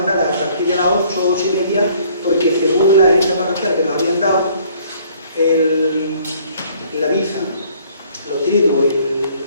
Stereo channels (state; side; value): inverted; both; correlation -0.59